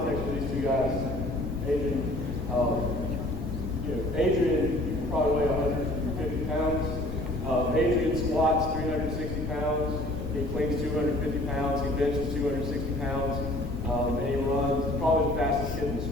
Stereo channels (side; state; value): left; noise; rumble, 6 dB below the sound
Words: for these two guys, Adrian, Adrian, you can probably weigh 150 pounds. Adrian squats 360 pounds. He cleans 250 pounds. He benches 260 pounds. And he runs probably the fastest kid in the